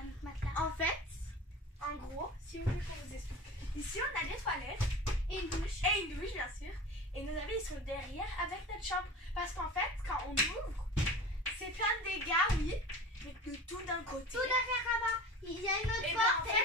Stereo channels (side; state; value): both; normal; correlation 0.35